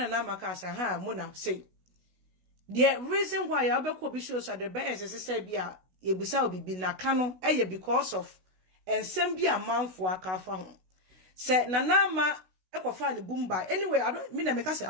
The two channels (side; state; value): left; late; 16 ms